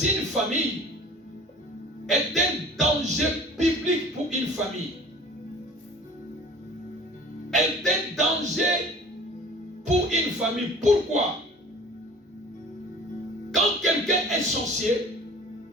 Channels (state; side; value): normal; both; correlation 0.44